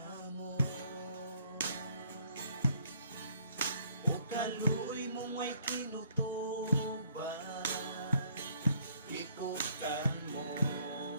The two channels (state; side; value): inverted; both; correlation -0.62